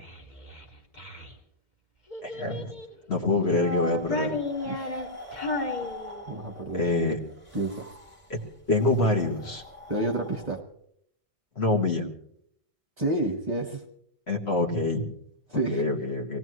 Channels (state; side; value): late; left; 1.6 ms